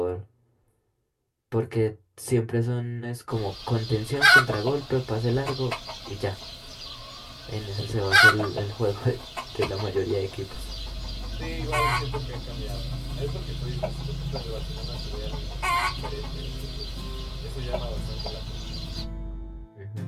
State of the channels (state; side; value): identical; both; correlation 1.00